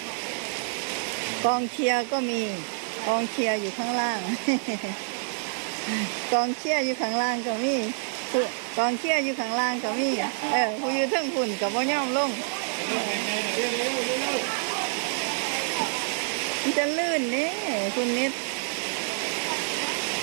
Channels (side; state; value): left; silent; digital silence